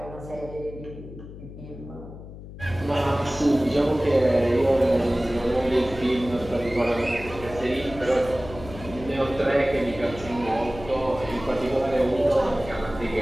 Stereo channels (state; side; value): noise; left; hum, 14 dB below the sound